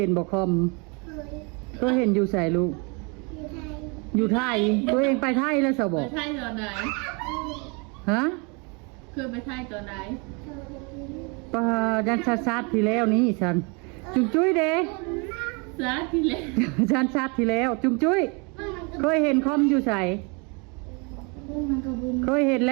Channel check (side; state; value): left; quieter; 32.0 dB